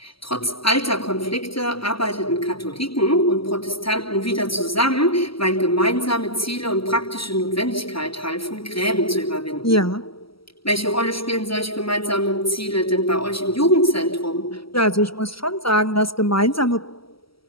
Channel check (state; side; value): late; right; 0.75 ms